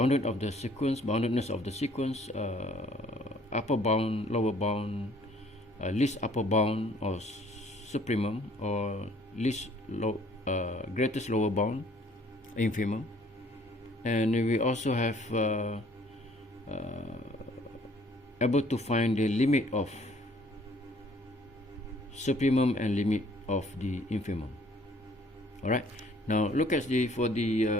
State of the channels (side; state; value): both; normal; correlation 0.59